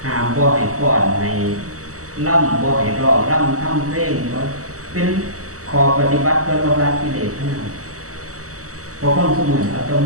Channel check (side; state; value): left; late; 0.65 ms